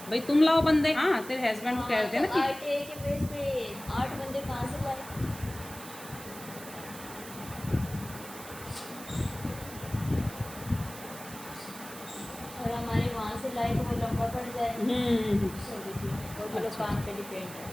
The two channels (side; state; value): right; noise; hiss, 14 dB below the sound